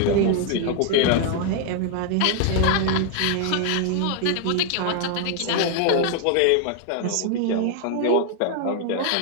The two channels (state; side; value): different; both; correlation 0.00